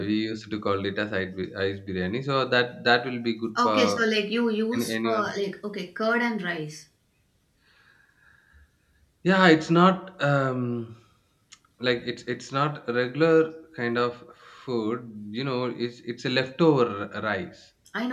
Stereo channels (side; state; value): both; identical; correlation 1.00